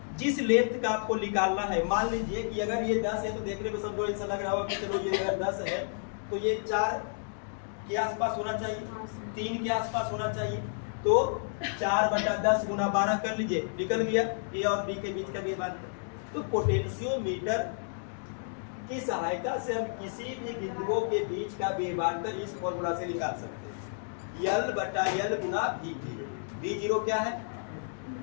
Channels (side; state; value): right; silent; digital silence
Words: जिस लेंथ का आपको निकालना है, मान लीजिए कि अगर ये 10 है तो देखने में समझो ऐसा लग रहा होगा कि चलो ये अगर 10 है तो ये 4 के आसपास होना चाहिए, 3 के आसपास होना चाहिए। तो 4 बटा 10 गुना 12 कर लीजिए, निकल गया ए और बी के बीच का विभवांतर। तो पोटेंशियोमीटर की सहायता से हम किसी भी बिंदुओं के बीच का विभवांतर इस फॉर्मूला से निकाल सकते हैं, यल बटा यल गुना V0। V0 क्या है,